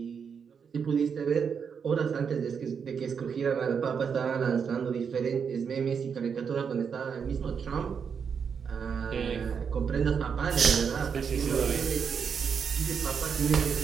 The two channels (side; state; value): left; quieter; 6.6 dB